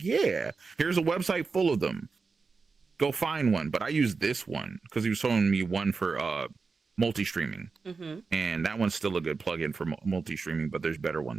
yeah, here's a website full of them. Go find one. But I used this one because he was showing me one for multi-streaming. And that one's still a good plugin for multi-streaming, but there's better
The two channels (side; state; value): left; quieter; 4.6 dB